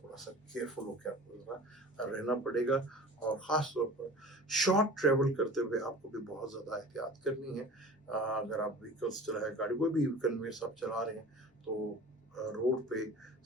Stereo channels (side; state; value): both; normal; correlation 0.40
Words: सा केयरफुल होकर आपको जरा रहना पड़ेगा। और ख़ास तौर पर शॉर्ट ट्रेवल करते हुए आपको भी बहुत ज़्यादा एहतियात करनी है। अगर आप व्हीकल्स चला है, गाड़ी कोई भी कन्वेंस आप चला रहे हैं, तो रोड पे